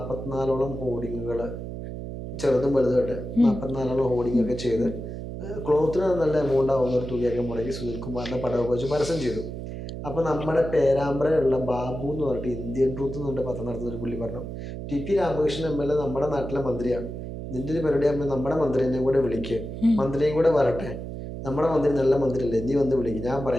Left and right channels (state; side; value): noise; right; hum, 8 dB below the sound